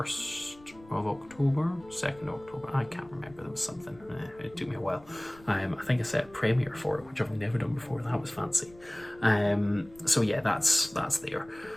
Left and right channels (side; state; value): left; noise; rumble, 24 dB below the sound